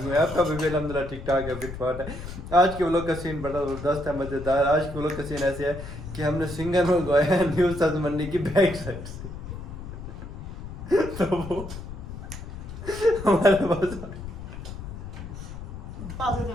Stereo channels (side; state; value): left; noise; rumble, 10 dB below the sound